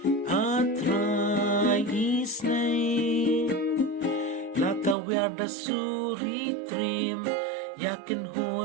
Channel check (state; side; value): drops out; left; at 5.0 s